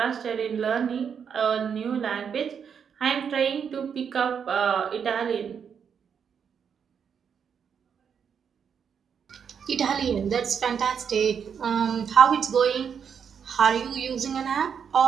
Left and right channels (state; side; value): quieter; left; 7.2 dB